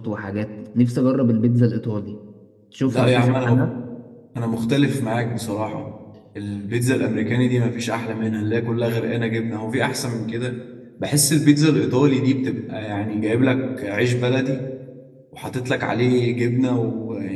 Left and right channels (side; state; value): both; identical; correlation 1.00